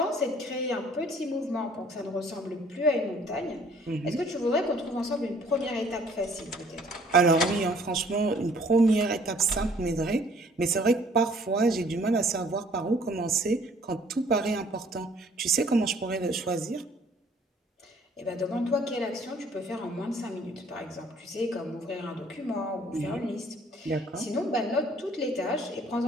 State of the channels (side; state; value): both; normal; correlation 0.58